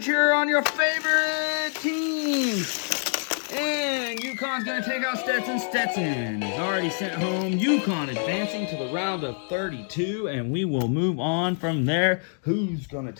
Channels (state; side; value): silent; right; digital silence